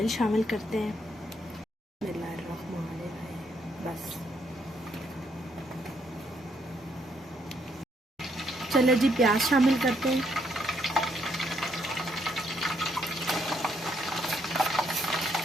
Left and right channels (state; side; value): normal; both; correlation 0.73